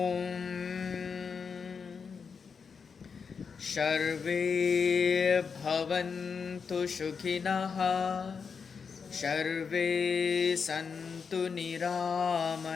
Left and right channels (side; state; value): right; quieter; 5.8 dB